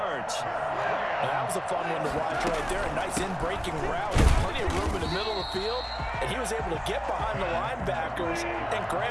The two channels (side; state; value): both; identical; correlation 1.00